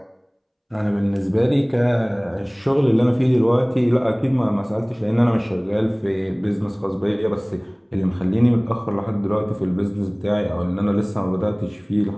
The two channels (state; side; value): identical; both; correlation 1.00